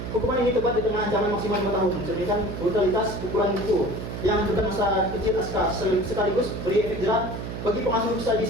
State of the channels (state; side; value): noise; right; hum, 7 dB below the sound